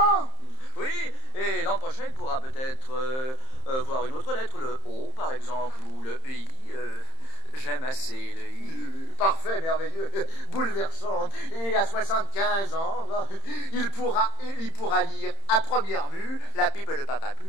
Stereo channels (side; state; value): right; late; 31 ms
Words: Oui, et l'an prochain, il pourra peut-être voir une autre lettre, le O, par exemple, ou le I. J'aime assez le I. Parfait, merveilleux, bouleversant. Et à 75 ans, il pourra lire à première vue la pipe de papa